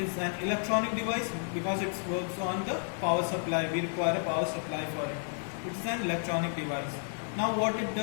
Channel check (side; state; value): right; silent; 57 dB below the other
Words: an electronic device because it works on the power supply. We require a power supply for it. It's an electronic device. Now what it